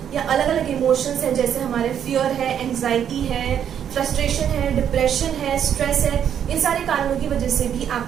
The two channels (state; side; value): quieter; left; 9.0 dB